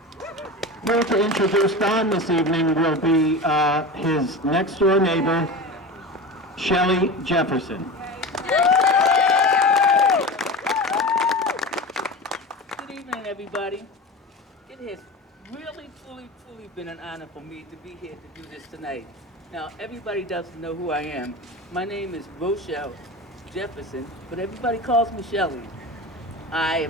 Here to introduce Don this evening will be his next-door neighbor, Shelley Jefferson. Good evening, everybody. It has really, truly been an honor for me to be here to do this tonight. Now, everybody doesn't know who I am. My name is Rochelle Jefferson, but everybody calls me Shelley. I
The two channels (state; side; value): normal; both; correlation 0.29